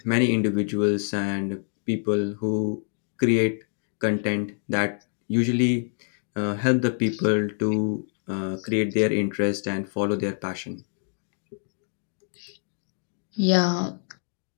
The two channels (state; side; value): silent; right; 57 dB below the other